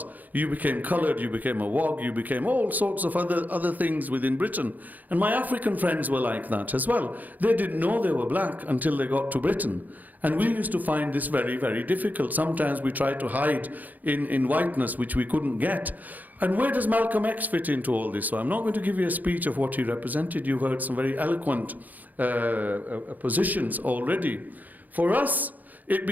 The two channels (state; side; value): late; left; 0.082 ms